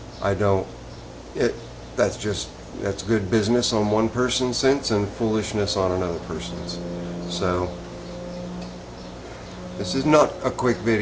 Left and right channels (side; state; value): both; identical; correlation 1.00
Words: That's good business on one person's sense and foolishness on another person's. So this is not a quick